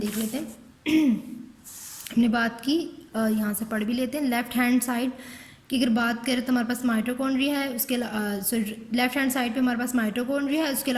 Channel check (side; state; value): both; identical; correlation 1.00